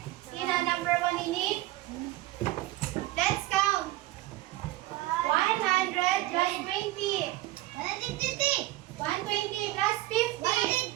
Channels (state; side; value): quieter; left; 16.9 dB